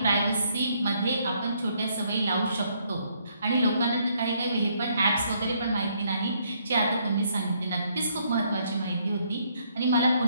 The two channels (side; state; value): both; inverted; correlation -0.70